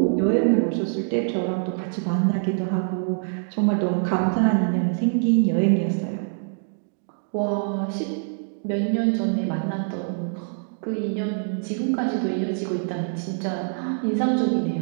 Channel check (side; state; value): left; silent; digital silence